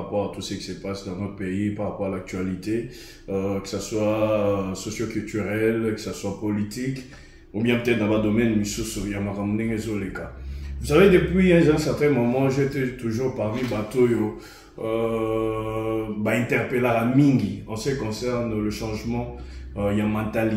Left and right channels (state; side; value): identical; both; correlation 1.00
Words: à tout ce qui se passe dans notre pays, par rapport à l'actualité, que ce soit socio-culturel, que ce soit politique, ou bien peut-être dans le domaine de les cas. Vous savez, depuis un certain moment, j'étais toujours parmi Batoyo, interpellé à Mingi en ce qui concerne le changement, il y a